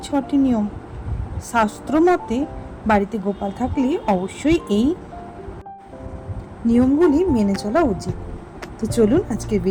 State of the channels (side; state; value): both; identical; correlation 1.00